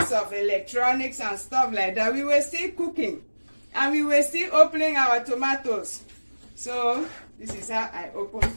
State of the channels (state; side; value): inverted; both; correlation -1.00